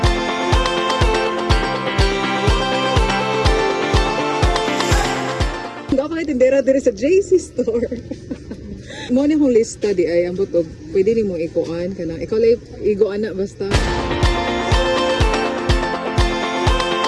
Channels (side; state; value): both; identical; correlation 1.00